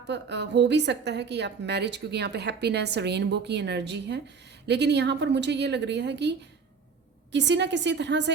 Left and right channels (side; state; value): left; quieter; 5.5 dB